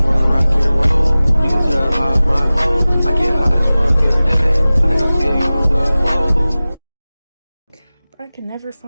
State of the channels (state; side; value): inverted; both; correlation -0.98